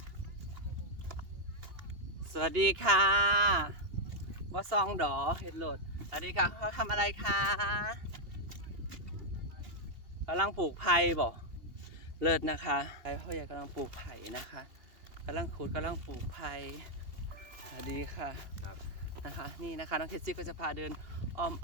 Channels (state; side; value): late; left; 2.7 ms